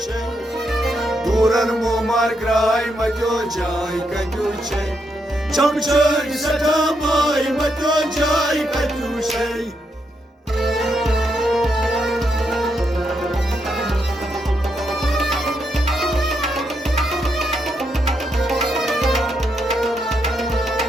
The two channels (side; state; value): both; normal; correlation 0.80